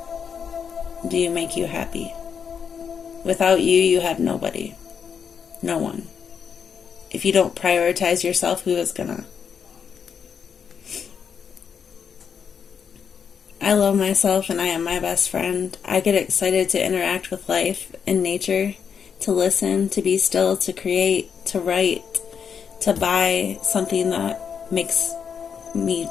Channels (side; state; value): right; quieter; 7.0 dB